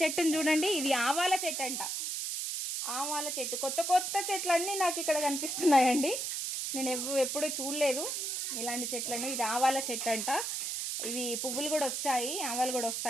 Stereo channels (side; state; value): right; noise; hiss, 2 dB below the sound